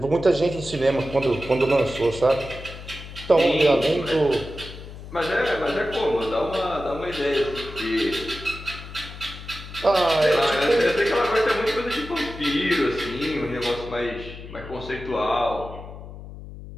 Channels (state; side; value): noise; left; hum, 13 dB below the sound